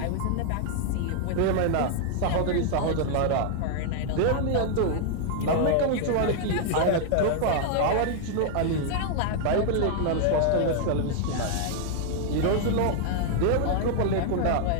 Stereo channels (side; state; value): both; different; correlation 0.00